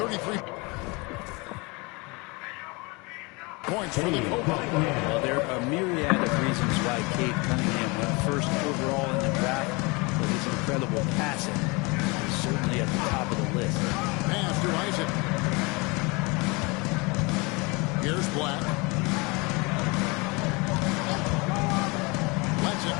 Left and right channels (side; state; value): right; quieter; 27.4 dB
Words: points for the Cobra. Well, there are a myriad of reasons why Cade Cunningham went first overall in the draft, but his incredible passing is certainly at the top of the list. Pass to Isaac. Here's Black. Lets it